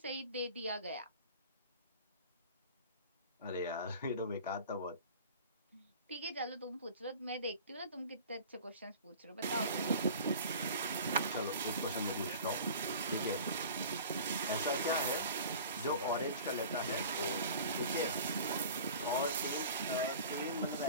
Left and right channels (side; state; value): both; inverted; correlation -0.41